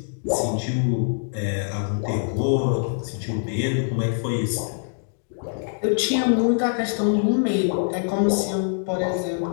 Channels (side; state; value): right; silent; digital silence